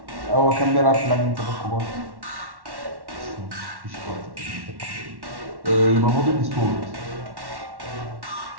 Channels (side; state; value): left; late; 1.1 ms